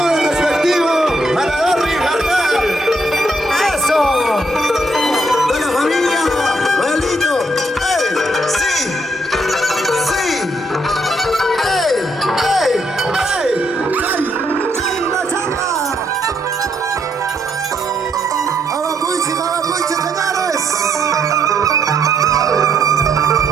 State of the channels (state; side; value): normal; both; correlation 0.73